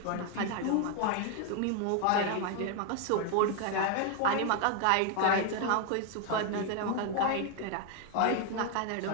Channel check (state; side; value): different; both; correlation 0.00